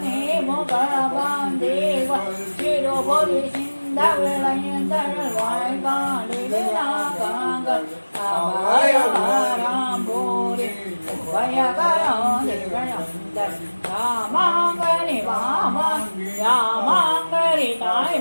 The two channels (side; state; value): both; inverted; correlation -1.00